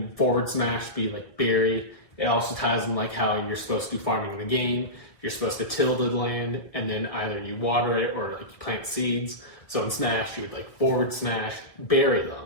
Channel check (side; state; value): right; late; 1.9 ms